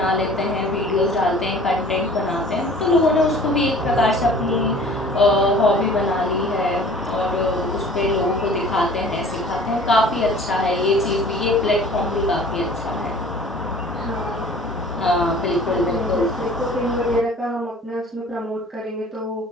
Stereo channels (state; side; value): normal; both; correlation 0.48